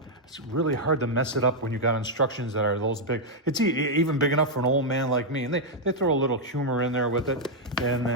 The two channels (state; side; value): normal; both; correlation -0.02